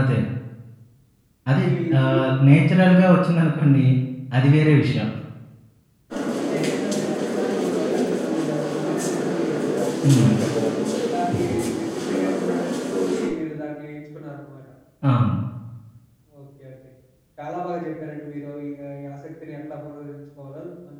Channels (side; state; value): both; identical; correlation 1.00